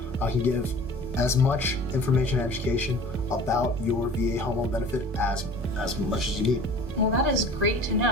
I can give as much information and education about your VA home loan benefit as much as you need. Well, that is great to know.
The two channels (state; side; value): normal; both; correlation 0.44